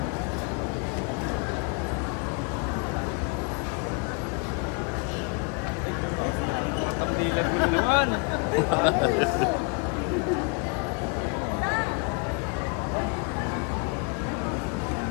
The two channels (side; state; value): right; quieter; 35.0 dB